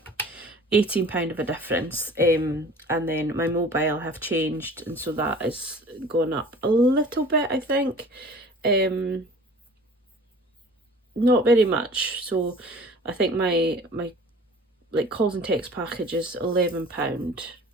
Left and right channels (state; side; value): normal; both; correlation 0.45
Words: £18 of a difference. And then my mobile have changed, and so that is going up a little bit, I think. Not very much. So I think my like calls and text package is £11.